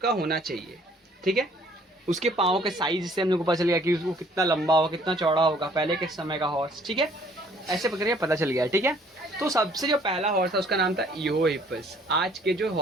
का होना चाहिए, ठीक है। उसके पाँव के साइज से हम लोग को पता चल गया कि वो कितना लंबा होगा, कितना चौड़ा होगा पहले के समय का हॉर्स, ठीक है। ऐसे प्रक्रिया पता चल गया, ठीक है। तो सबसे जो पहला हॉर्स था उसका नाम था इयोहिपस। आज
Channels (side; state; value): both; normal; correlation 0.59